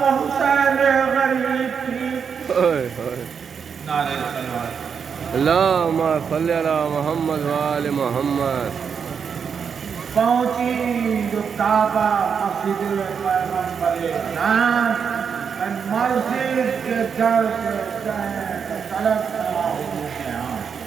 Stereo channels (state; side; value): quieter; left; 6.6 dB